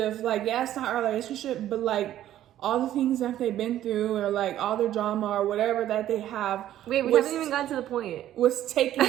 like, yeah, it's not our relationship, but like all the things that they've been through, or like all the drama or whatever that they have. Wait, we haven't even gotten to the point. Was taking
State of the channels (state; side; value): quieter; left; 12.5 dB